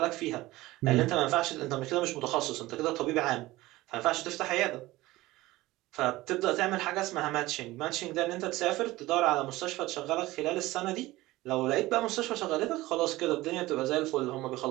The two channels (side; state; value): left; quieter; 18.4 dB